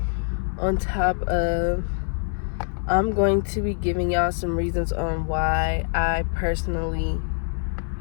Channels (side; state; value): right; silent; digital silence